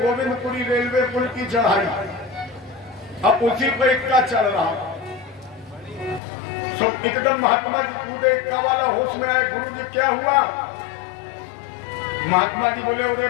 रेलवे पुल की चढ़ाई, अब उसी पर इक्का चल रहा, सो एकदम महात्मा जी कूदे, इक्का वाला होश में आए, गुरु जी क्या हुआ? महात्मा जी बोले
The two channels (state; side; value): drops out; right; at 6.2 s